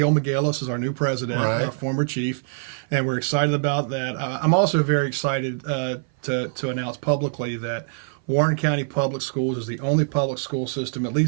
McGillis is our new president, our former chief, and we're excited about that. I'm also very excited to announce publicly that Warren County Public Schools is the only public school system, at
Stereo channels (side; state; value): left; silent; 58 dB below the other